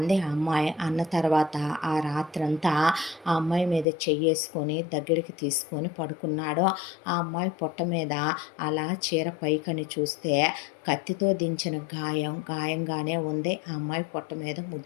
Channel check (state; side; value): drops out; right; at 3.9 s